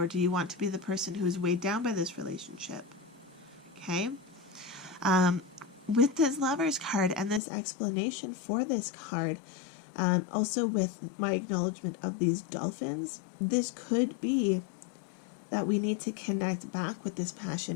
do you want to be the person who is weighed down by this relationship? Okay? With this Lovers card and this explanation for this card, also with my acknowledgement of these dolphins, this could be that we need to connect back with this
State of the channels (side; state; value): right; drops out; at 7.4 s